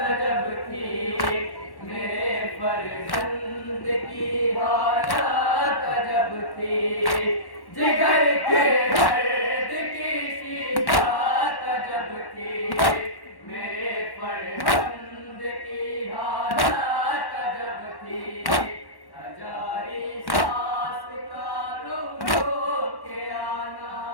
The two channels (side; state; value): right; late; 1.1 ms